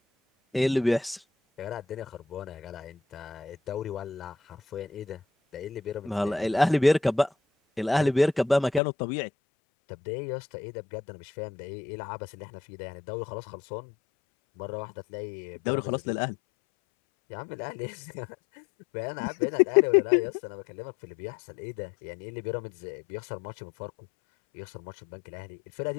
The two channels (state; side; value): drops out; right; at 8.8 s